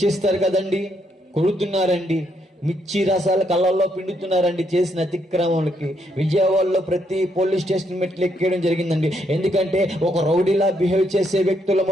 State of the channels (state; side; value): normal; both; correlation 0.75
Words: కదండి. కొడుతున్నారండి, మిర్చి రసాల కళ్ళల్లో పిండుతున్నారండి చేసిన అతిక్రమాలకి. విజయవాడలో ప్రతి పోలీస్ స్టేషన్ మెట్లు ఎక్కేయడం జరిగిందండి. ఎందుకంటే ఒక రౌడీలా బిహేవ్ చేసే